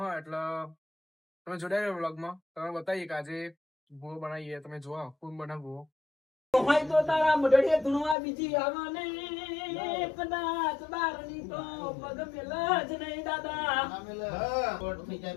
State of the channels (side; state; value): right; drops out; at 8.2 s